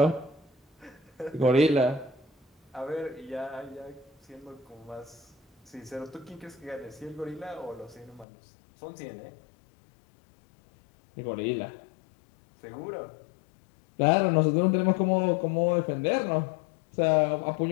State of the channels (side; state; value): right; drops out; at 8.2 s